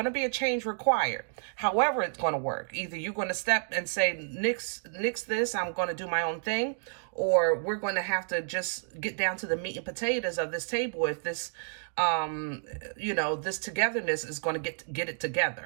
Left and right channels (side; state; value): left; silent; digital silence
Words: to be a change required. However it's going to work, either you're going to step and say, nix this, I'm going to do my own thing, or we're going to have to just get down to the meat and potatoes of this table. If this this togetherness is going to get it